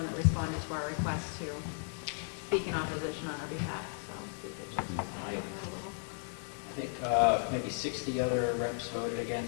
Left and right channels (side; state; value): right; silent; 54 dB below the other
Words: that responded to our request to speak in opposition on our behalf, so we did just a little. I think maybe 60 other reps voted